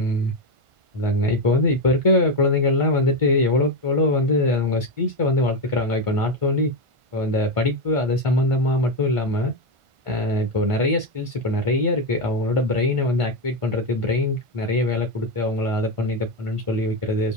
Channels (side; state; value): left; late; 1.5 ms